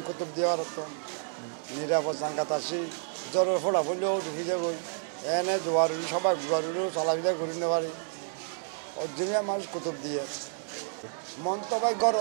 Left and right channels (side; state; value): left; silent; digital silence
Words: কুতুব দেওয়ার তো নিরাপদ জাঙ্গাত আসি জ্বরের ফোড়া ফুলেও ঢুকে যাবো এনে জোয়ারি সবাই জোয়ারিও চলাফেরা করে নিতে পারি অরিজিনাল মানুষ কুতুব দিয়ে মন তো ভাই গড়